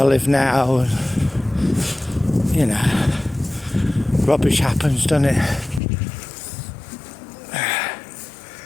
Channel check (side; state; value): right; drops out; at 5.8 s